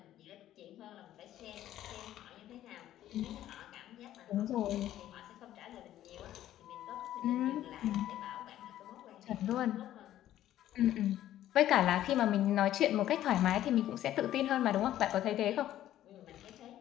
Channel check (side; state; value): right; quieter; 12.7 dB